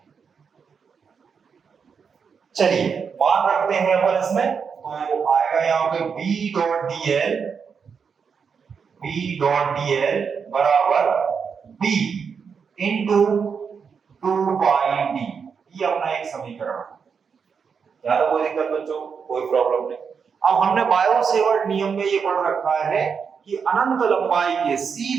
चलिए मान रखते हैं अपन इसमें, तो आएगा यहाँ पे B dot DL, B dot DL बराबर बी इंटू 2 पाई डी, ये अपना एक समीकरण है, यहाँ तो कोई दिक्कत बच्चों, कोई प्रॉब्लम नहीं। अब हमने बायो सेवर्ट नियम में ये पढ़ रखा है कि अनंत लंबाई के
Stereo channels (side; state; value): left; quieter; 6.2 dB